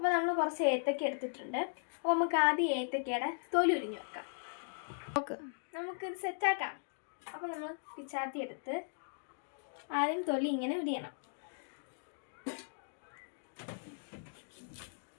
നമ്മൾ കുറച്ച് ഏത്തക്ക എടുത്തിട്ടുണ്ട്. അപ്പോൾ നമുക്ക് ആദ്യം ഏത്തക്കയുടെ തൊലി ഉരിഞ്ഞ് വെക്കാം. നമുക്കിത് സെറ്റാക്കാം. അപ്പോൾ നമ്മൾ പിച്ചാത്തി എടുത്ത് ആദ്യം തൊലി ഇങ്ങനെ ഉരിയണം.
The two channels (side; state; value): right; silent; digital silence